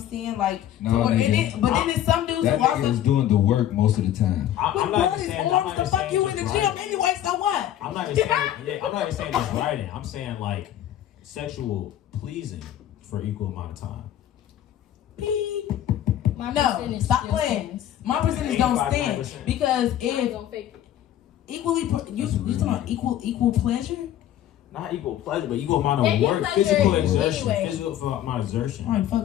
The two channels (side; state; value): right; quieter; 11.7 dB